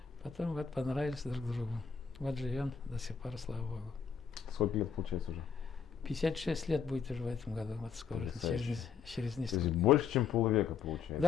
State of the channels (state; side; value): quieter; right; 6.6 dB